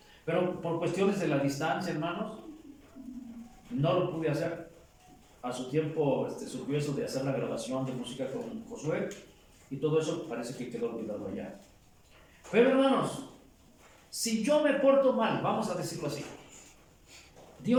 pero por cuestiones de la distancia, hermanos, no lo pude hacer. A su tiempo surgió eso de hacer la grabación de música con Josué, y todo eso parece que quedó olvidado allá. Pero hermanos, si yo me porto mal, vamos a decirlo así,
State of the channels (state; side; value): identical; both; correlation 1.00